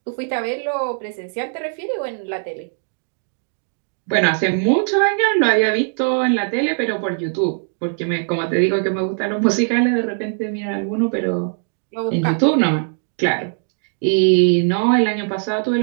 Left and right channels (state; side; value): silent; left; digital silence